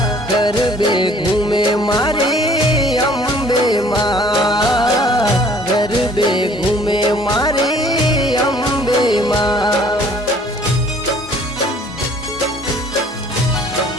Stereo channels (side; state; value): both; normal; correlation 0.55